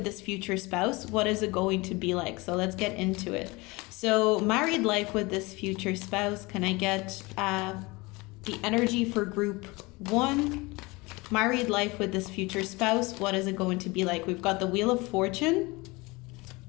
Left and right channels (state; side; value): quieter; right; 24.1 dB